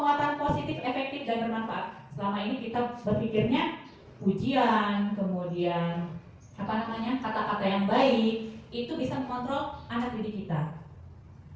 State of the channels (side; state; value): both; identical; correlation 1.00